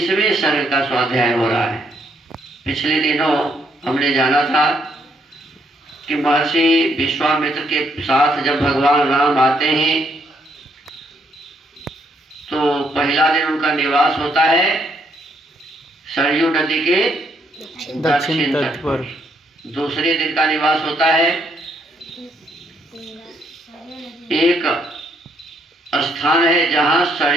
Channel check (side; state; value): both; normal; correlation 0.73